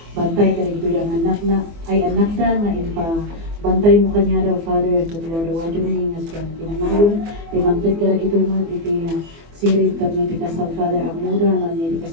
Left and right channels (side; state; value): left; late; 24 ms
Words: bantay ka rin ito yung anak na, ay anak na, nga ipa bantay mo kanya daw, Father, at Lord, awadyo niya nga siya, pinamayon, iti mangtod ka rin ito yung iti sirit, kat may tikasal, Father, ang muda, na niya iti